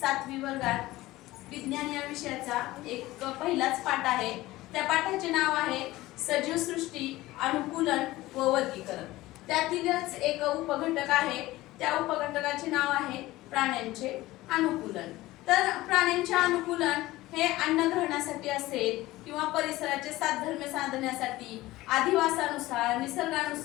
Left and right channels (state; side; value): quieter; right; 17.8 dB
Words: 5वी वर्गात विज्ञान या विषयाचा एक पहिलाच पाठ आहे। त्या पाठाचे नाव आहे सजीव सृष्टी, अनुकूलन व वर्गीकरण। त्यातीलच एक उपघटक आहे, त्या उपघटकाचे नाव आहे प्राण्यांचे अनुकूलन। तर प्राण्यांचे अनुकूलन हे अन्न ग्रहणासाठी असेल किंवा परिसराचे साधर्म्य साधण्यासाठी, अधिवासानुसार,